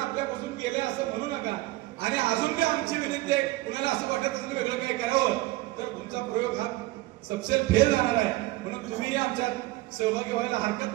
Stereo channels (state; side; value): quieter; left; 18.8 dB